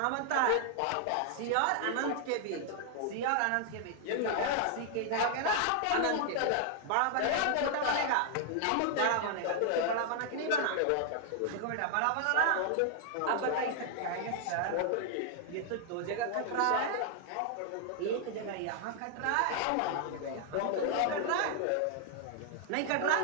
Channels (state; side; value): different; both; correlation 0.00